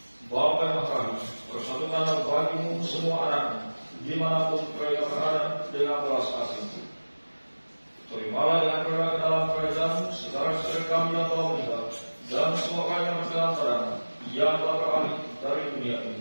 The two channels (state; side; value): inverted; both; correlation -1.00